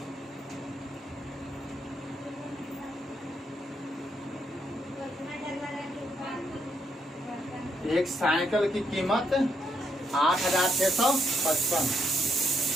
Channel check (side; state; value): both; normal; correlation 0.76